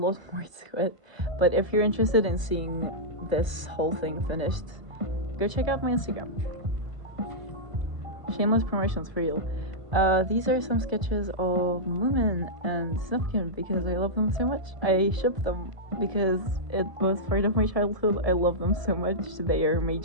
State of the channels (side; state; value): left; late; 1.0 ms